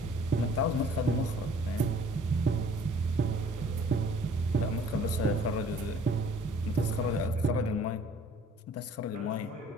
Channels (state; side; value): normal; both; correlation 0.54